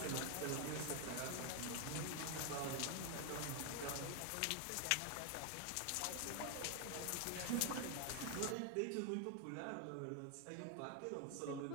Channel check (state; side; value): different; both; correlation 0.01